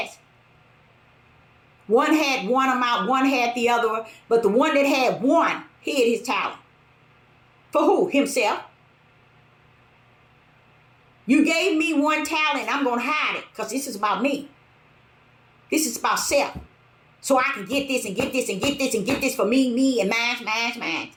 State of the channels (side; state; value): both; identical; correlation 1.00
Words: One had one amount, one had the other, but the one that had one hid his talent. For who? Himself. You gave me one talent, I'm going to hide it because this is about me. This is about self. So I can get this and get this and get this and get this for me and mine.